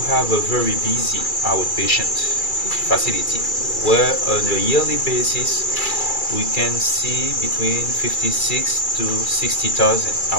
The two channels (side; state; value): right; late; 2.4 ms